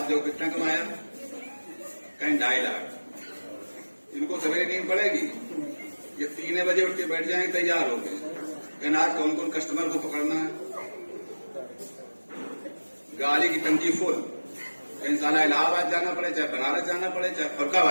जो कितना कमाया, कहीं 2.5 लाख। इनको सवेरे नींद पड़ेगी, ये 3 बजे उठ के बैठ जाएंगे तैयार हो गए, कहना आज कौन कौन कस्टमर को पकड़ना है। गाड़ी की टंकी फुल, कहीं साला इलाहाबाद जाना पड़े, चाहे बनारस जाना पड़े, चाहे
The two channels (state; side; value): inverted; both; correlation -1.00